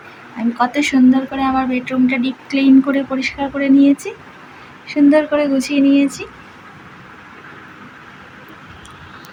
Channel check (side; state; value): both; identical; correlation 1.00